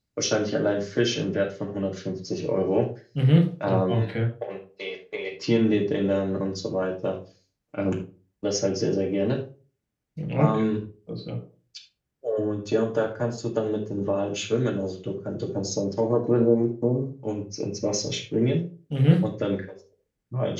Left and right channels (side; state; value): both; identical; correlation 1.00